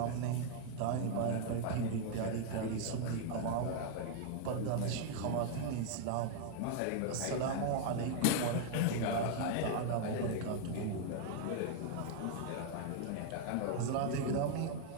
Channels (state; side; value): different; both; correlation 0.00